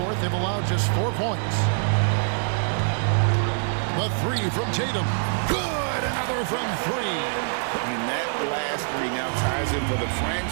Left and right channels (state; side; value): silent; left; digital silence